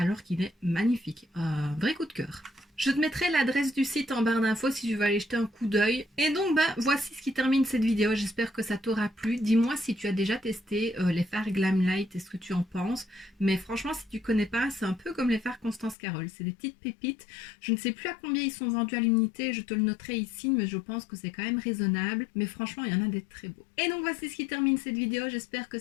qu'il est magnifique. Un vrai coup de cœur. Je te mettrai l'adresse du site en barre d'infos si tu veux aller jeter un coup d'œil. Et donc voici ce qui termine cette vidéo, j'espère que ça t'aura plu. Dis-moi si tu as déjà testé les fards Glamlite et ce que tu en penses. Mais franchement si tu connais pas, c'est un peu comme les fards Constance Carole, c'est des petites pépites. Je ne sais plus à combien ils sont vendus à l'unité, je te le noterai ici, mais je pense que c'est quand même raisonnable. Mais franchement il y en a des très beaux. Et donc voici ce qui termine cette vidéo, j'espère que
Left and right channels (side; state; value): right; drops out; at 16.0 s